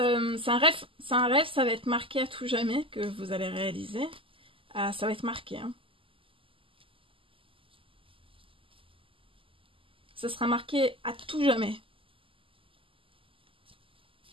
un rêve, ça va être marqué à tout jamais que vous allez réaliser. Ça va être marqué. Hein. Ça sera marqué à tout jamais.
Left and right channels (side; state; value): left; late; 0.25 ms